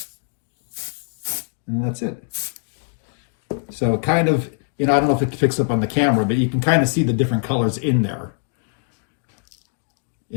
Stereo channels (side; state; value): right; silent; 55 dB below the other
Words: And that's it. So kind of, you know, I don't know if it picks up on the camera, but you can kind of see the different colors in there